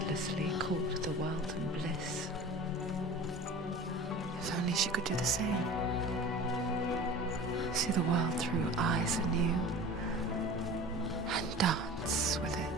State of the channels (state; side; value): normal; both; correlation 0.38